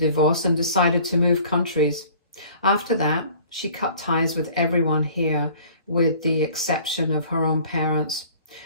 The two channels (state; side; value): inverted; both; correlation -0.50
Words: and decided to move countries. After that, she cut ties with everyone here, with the exception of her own parents.